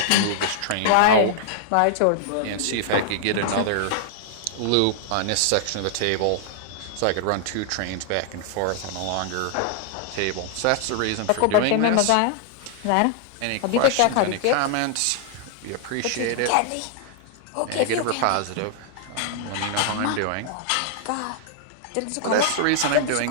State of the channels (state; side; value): different; both; correlation -0.01